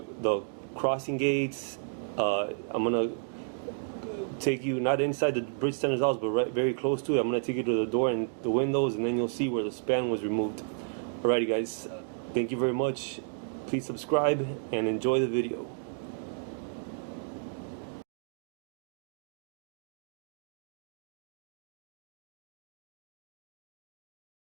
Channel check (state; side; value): silent; left; digital silence